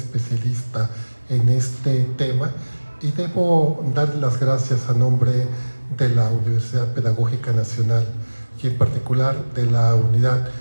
en este tema, y debo dar las gracias a nombre de la Universidad Pedagógica Nacional y en particular de la unidad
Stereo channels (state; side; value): inverted; both; correlation -1.00